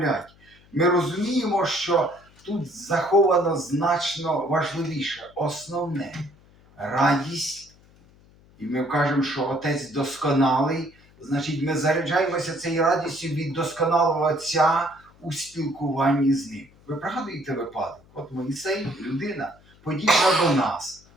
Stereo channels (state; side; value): noise; left; hum, 28 dB below the sound